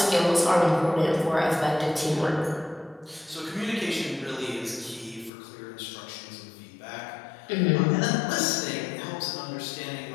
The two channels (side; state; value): right; drops out; at 5.3 s